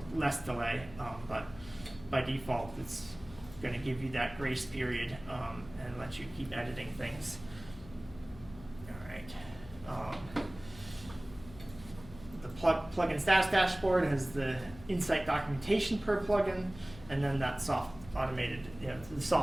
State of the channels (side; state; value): left; noise; hum, 17 dB below the sound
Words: less delay, but by default, it's going to give you that grace period and let you keep editing things. All right. The plugin status dashboard has the insight documentation per plugin, and then that soft automated, the